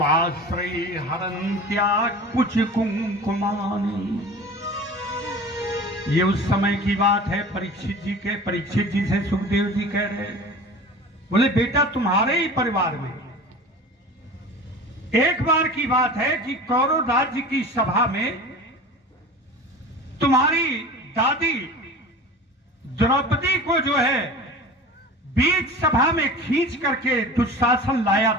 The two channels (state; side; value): normal; both; correlation 0.37